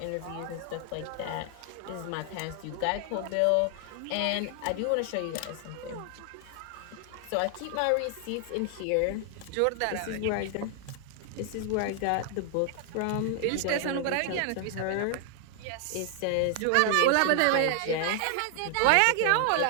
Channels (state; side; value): different; both; correlation 0.00